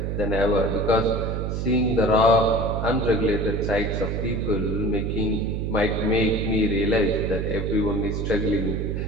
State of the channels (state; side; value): noise; right; hum, 2 dB below the sound